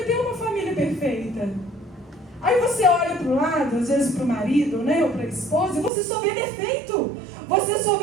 uma família perfeita. Aí você olha para o lado, às vezes para o marido, né, ou para a esposa, e você só vê defeito, você só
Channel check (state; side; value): drops out; left; at 5.9 s